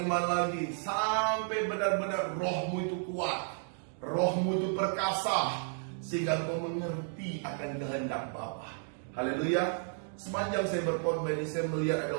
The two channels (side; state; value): left; silent; 56 dB below the other